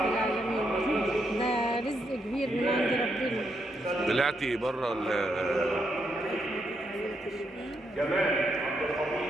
العالمين، ده رزق كبير من عند ربنا. طلعتي بره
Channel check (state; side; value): normal; both; correlation 0.79